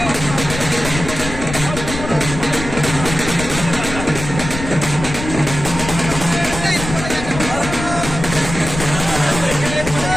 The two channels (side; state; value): left; noise; rumble, 8 dB below the sound